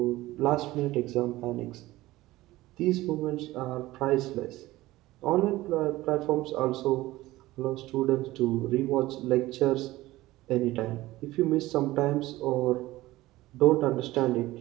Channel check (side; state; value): left; quieter; 17.7 dB